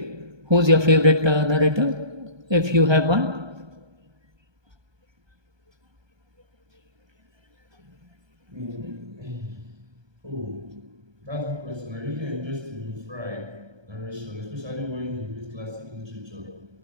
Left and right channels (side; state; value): left; late; 1.2 ms